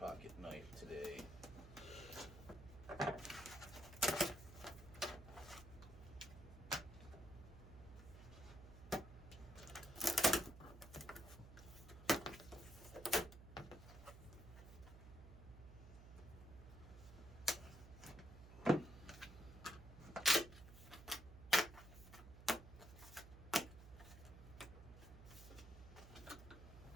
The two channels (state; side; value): noise; right; hum, 15 dB below the sound